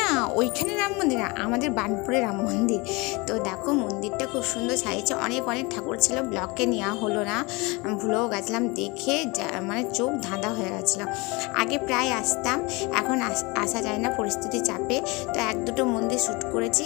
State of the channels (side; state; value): right; quieter; 26.0 dB